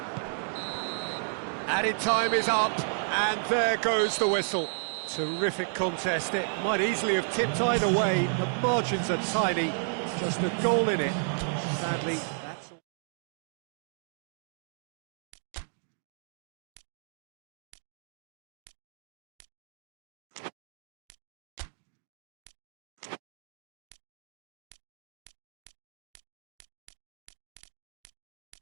Added time is up, and there goes the whistle. Terrific contest. It might easily have tipped either way. The margins are tiny, just a goal in it. Sadly, that's all.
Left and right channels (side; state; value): left; silent; digital silence